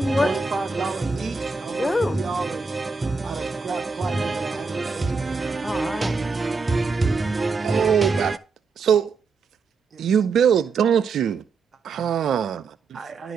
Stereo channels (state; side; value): quieter; left; 4.6 dB